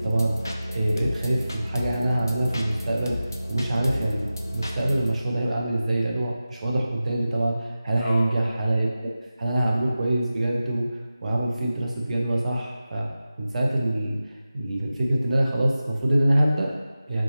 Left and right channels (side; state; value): both; inverted; correlation -0.94